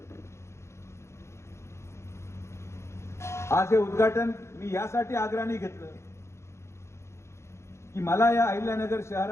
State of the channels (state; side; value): late; right; 0.13 ms